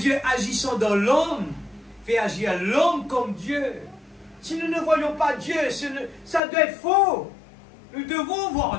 agissant dans l'homme fait agir l'homme comme Dieu. Si nous ne voyons pas Dieu, ça doit être faux. Nous devons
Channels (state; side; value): drops out; right; at 6.4 s